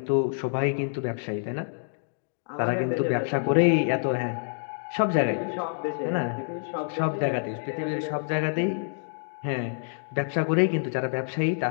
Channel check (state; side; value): silent; right; digital silence